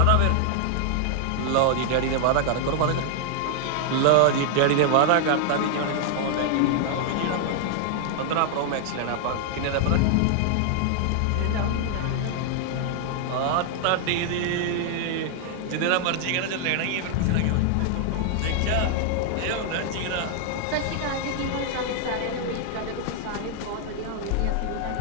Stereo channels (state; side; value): different; both; correlation 0.00